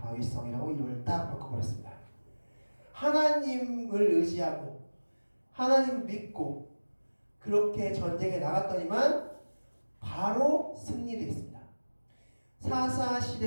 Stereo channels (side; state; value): both; inverted; correlation -1.00